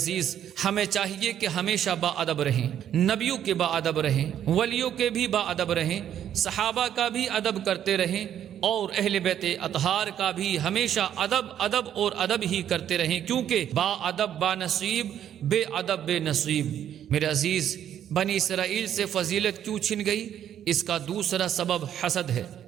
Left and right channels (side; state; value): left; quieter; 10.2 dB